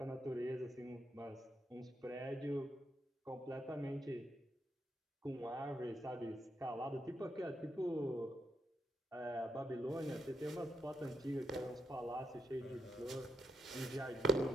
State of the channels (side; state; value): both; normal; correlation 0.81